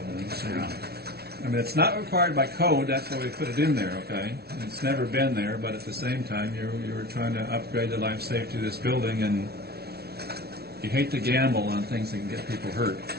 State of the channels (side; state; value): left; late; 0.46 ms